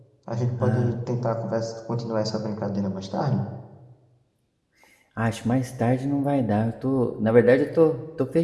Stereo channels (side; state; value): both; identical; correlation 1.00